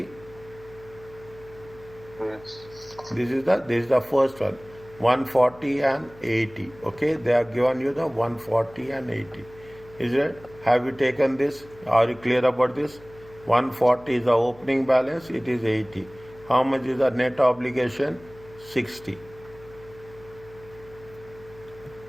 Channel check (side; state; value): left; noise; hum, 22 dB below the sound